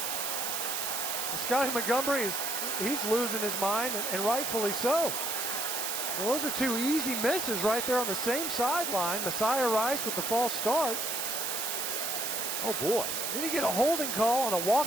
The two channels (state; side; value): noise; right; hiss, 1 dB below the sound